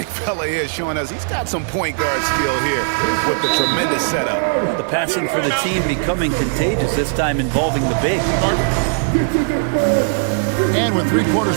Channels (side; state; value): left; silent; digital silence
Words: fella here showing us he's got some point guard skill here with the tremendous setup. The passing for the team becoming contagious, this time involving the big. And with 3 quarters